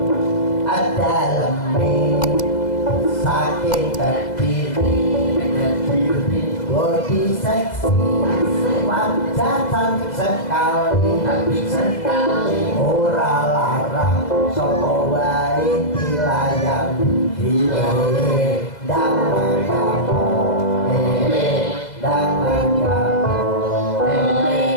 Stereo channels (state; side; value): late; right; 2.0 ms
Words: ada lemih saking terdiri body seksi wajah cantik sekali ora larang sopo wae dilayang dangan kamu dangan